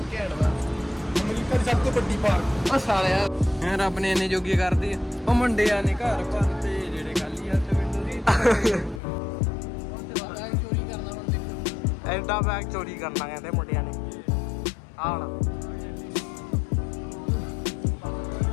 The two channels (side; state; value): right; drops out; at 9.0 s